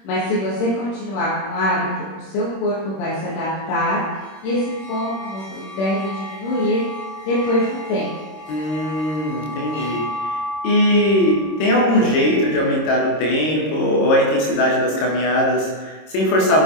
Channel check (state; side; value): late; right; 26 ms